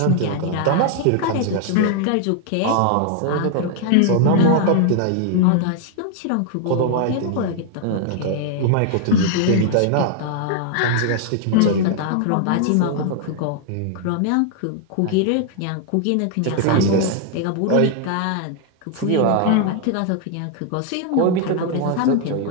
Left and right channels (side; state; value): both; different; correlation 0.00